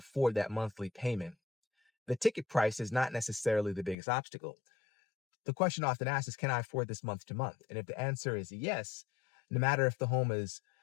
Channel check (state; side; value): drops out; right; at 4.0 s